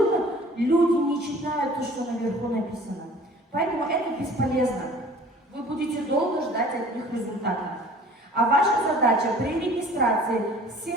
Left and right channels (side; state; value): both; normal; correlation 0.49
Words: люди не читают то, что наверху написано. Поэтому это бесполезно. Вы будете долго ждать от них результатов. А ваша задача при регистрации